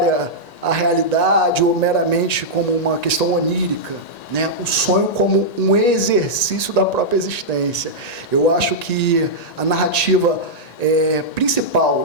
à realidade ou meramente como uma questão onírica, né? O sonho como um exercício da própria existência. Eu acho que a narrativa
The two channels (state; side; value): late; right; 1.9 ms